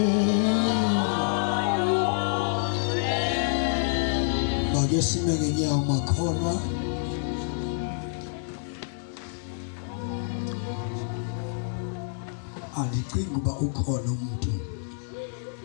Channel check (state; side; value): silent; right; digital silence